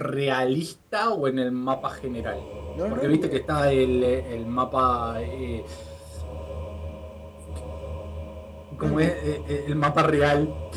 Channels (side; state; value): both; identical; correlation 1.00